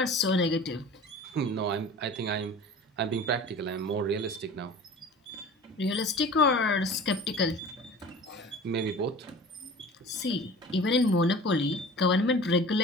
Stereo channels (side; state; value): both; normal; correlation 0.40